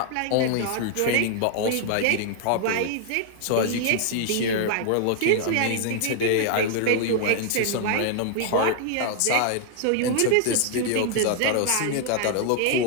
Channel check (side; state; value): both; different; correlation 0.00